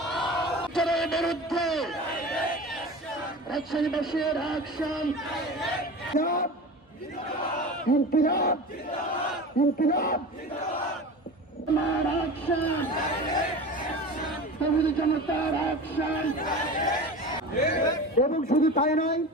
বিরুদ্ধে রাজশাহীবাসীর অ্যাকশন ইনকিলাব ইনকিলাব আমার অ্যাকশন তৌহিদি জনতার অ্যাকশন। এবং শুধু তাই নয়,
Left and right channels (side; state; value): both; normal; correlation 0.33